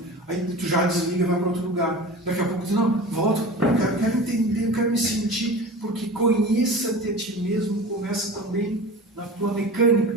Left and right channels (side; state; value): both; normal; correlation 0.35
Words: Aí tu já desliga e vai para outro lugar. Daqui a pouco tu não, volta, eu quero entender, eu quero me sentir, porque conheça-te a ti mesmo, começa também na tua